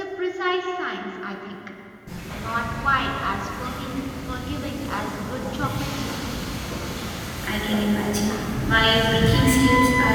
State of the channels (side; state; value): both; identical; correlation 1.00